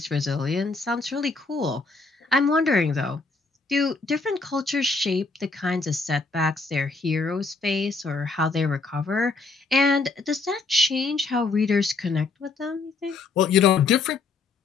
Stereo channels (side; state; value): right; quieter; 4.0 dB